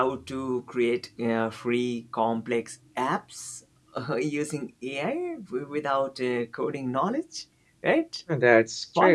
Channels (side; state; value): both; identical; correlation 1.00